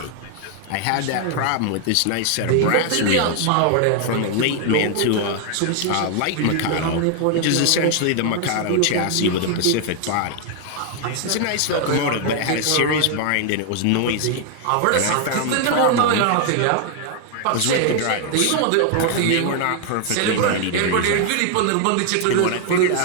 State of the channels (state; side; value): different; both; correlation 0.00